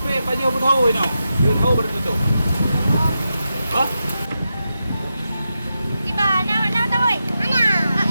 Pak Jo tahu ini. Dia tahu bertutup. Oh. Tiba nak tahu oi. Mana?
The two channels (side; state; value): both; inverted; correlation -0.89